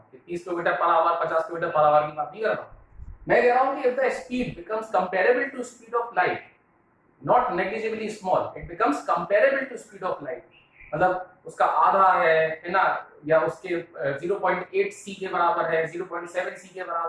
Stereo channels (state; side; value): identical; both; correlation 1.00